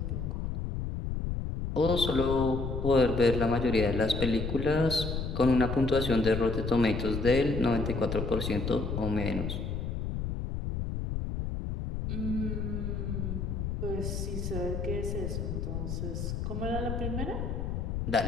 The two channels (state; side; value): noise; left; rumble, 3 dB below the sound